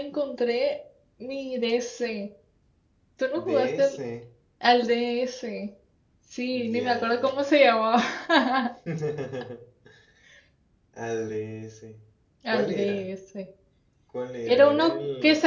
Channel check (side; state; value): both; identical; correlation 1.00